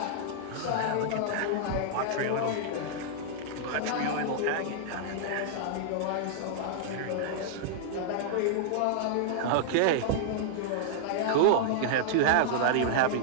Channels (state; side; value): different; both; correlation -0.02